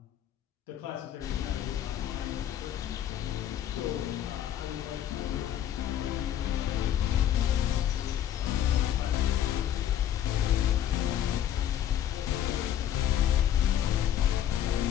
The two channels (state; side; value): quieter; right; 10.6 dB